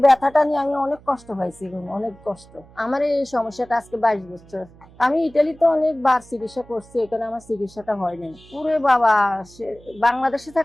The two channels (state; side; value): noise; right; hum, 24 dB below the sound